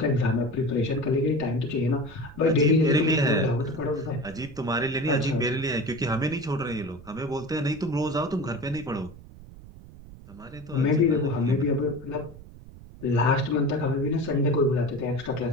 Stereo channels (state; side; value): noise; right; rumble, 18 dB below the sound